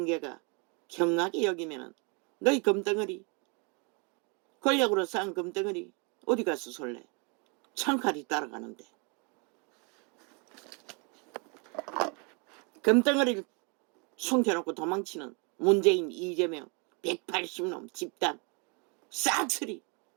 경하게 여기면은 너희 금덩어리, 권력으로 쌓은 금덩어리 어디 가서 솔래. 창칼이 따라가는데. 금덩어리를 숨겨놓고 도망치는 문재인, 이재명, 180놈 집단 싹쓸이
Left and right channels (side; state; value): left; quieter; 33.1 dB